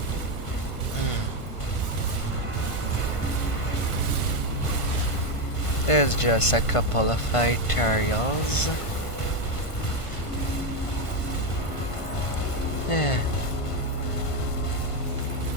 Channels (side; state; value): right; late; 1.5 ms